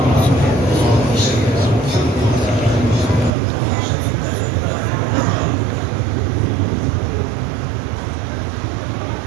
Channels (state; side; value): drops out; left; at 3.4 s